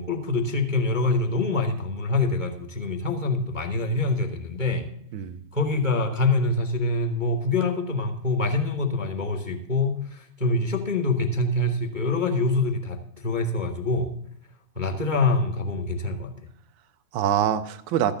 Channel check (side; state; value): left; late; 2.2 ms